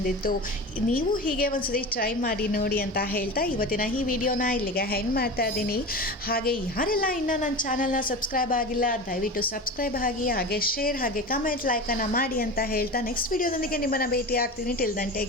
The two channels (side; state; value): both; normal; correlation 0.29